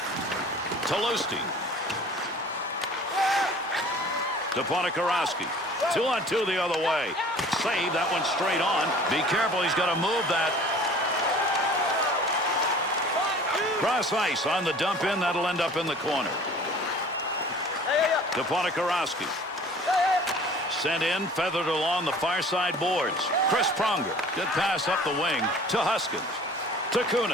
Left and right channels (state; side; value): normal; both; correlation 0.47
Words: Talusti. Deponikarowski. 2-on-2 the other way. Save that one straight on. Be careful, he's got to move that. Cross ice on the dump in. That'll end up in the corner. Deponikarowski. Sent in, feathered along the far side boards. Chris Pronger. Good pass up the wing to Huskins. To